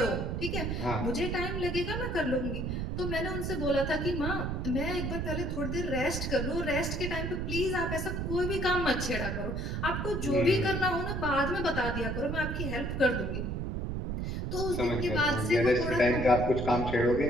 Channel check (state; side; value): noise; right; rumble, 2 dB below the sound